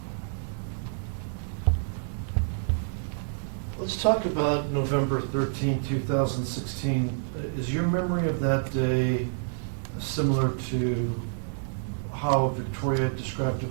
Let's talk about November 13, 2016. Is your memory of that day similar to how Victoria described it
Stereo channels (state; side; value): silent; left; digital silence